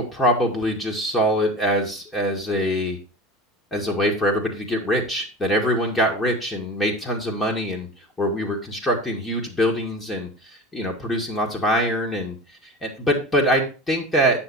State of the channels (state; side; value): normal; both; correlation 0.32